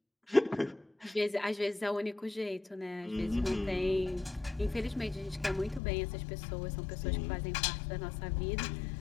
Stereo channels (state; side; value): drops out; right; at 5.8 s